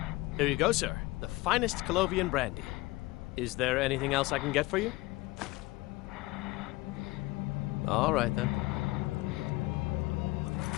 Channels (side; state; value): right; quieter; 20.8 dB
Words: Here you go, sir. The finest Colovian brandy. Is there anything else I can get for you? All right, then.